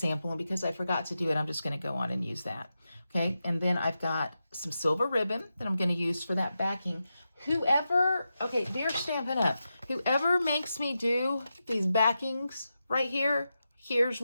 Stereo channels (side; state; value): both; inverted; correlation -0.89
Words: and because I forgot to do it, I'm just going to go on and use that. Okay, and then I've got some silver ribbon that I'm going to use for that backing. Whoever, okay, they're Stampin' Up. Whoever makes me do these backings right here, here's